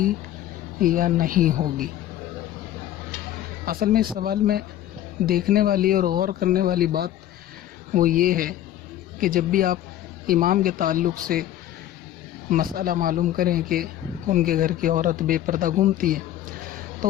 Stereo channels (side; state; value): right; quieter; 12.5 dB